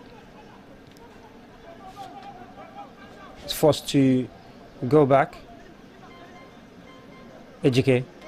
It's forced to go back. Ejike.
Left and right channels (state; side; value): identical; both; correlation 1.00